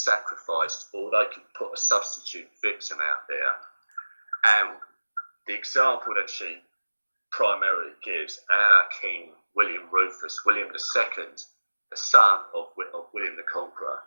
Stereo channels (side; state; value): both; inverted; correlation -1.00